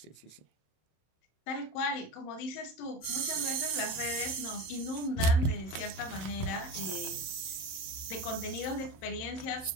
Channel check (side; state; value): right; late; 26 ms